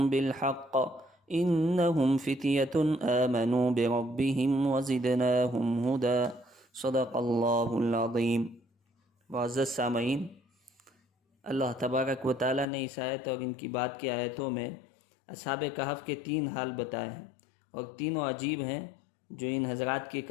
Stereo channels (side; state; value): right; drops out; at 12.7 s